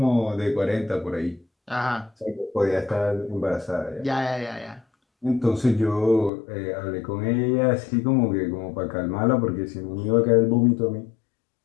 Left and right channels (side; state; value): right; drops out; at 6.3 s